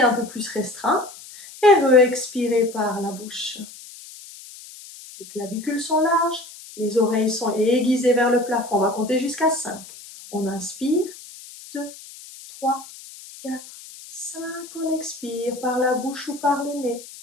peu plus restreint. Et re-expirez par la bouche. Les clavicules sont larges, les oreilles sont aiguisées vers le plafond. On va compter jusqu'à 5. On inspire, 2, 3, 4, 5. On expire par la bouche ou par le nez.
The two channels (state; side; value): noise; left; hiss, 17 dB below the sound